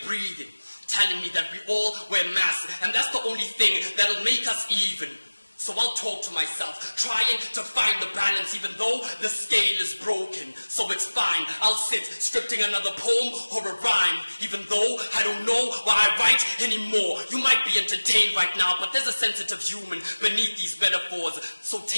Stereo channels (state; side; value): inverted; both; correlation -1.00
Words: breathing, telling me that we all wear masks and that's the only thing that'll make us even. So I'll talk to myself, trying to find the balance even though the scale is broken. So it's fine, I'll sit scripting another poem or a rhyme, even though I don't know why I write anymore. You might be entertained right now, but there's a sensitive human beneath these metaphors. So